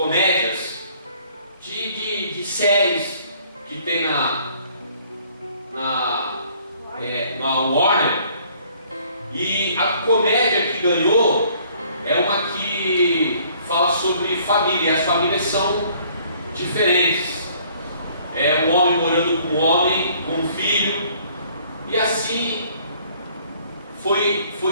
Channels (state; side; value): inverted; both; correlation -0.59